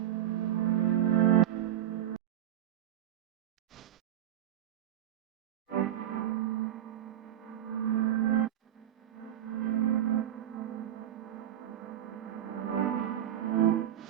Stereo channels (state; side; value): quieter; left; 11.4 dB